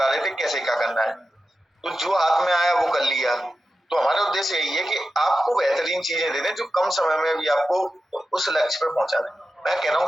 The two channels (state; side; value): normal; both; correlation 0.92